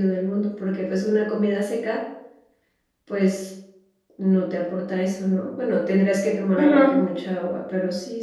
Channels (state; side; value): identical; both; correlation 1.00